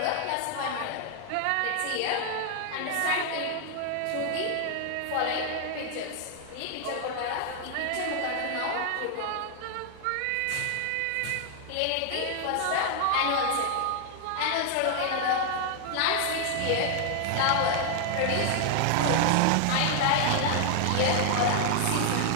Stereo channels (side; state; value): both; different; correlation 0.00